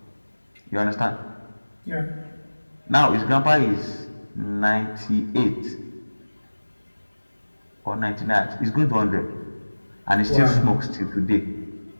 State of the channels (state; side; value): inverted; both; correlation -1.00